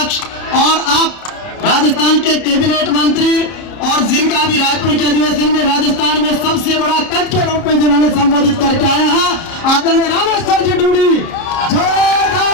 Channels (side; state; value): right; late; 30 ms